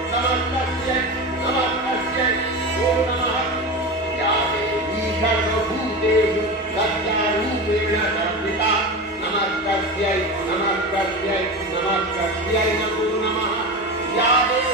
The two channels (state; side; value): normal; both; correlation 0.25